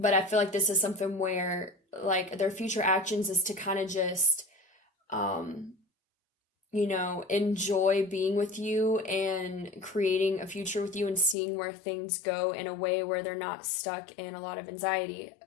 I feel like this is something where like their future actions is to kind of just, enjoy being with you and creating a future with you and seeing where things go in a way where they're not stuck in a lot of anxiety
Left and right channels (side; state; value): right; drops out; at 11.4 s